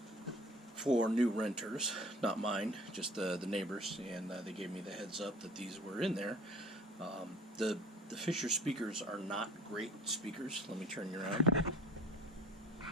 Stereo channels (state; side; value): normal; both; correlation 0.47